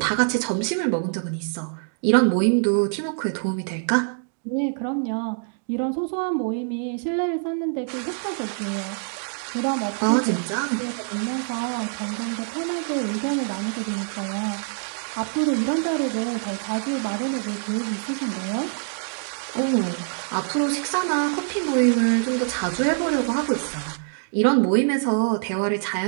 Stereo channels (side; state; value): left; silent; 62 dB below the other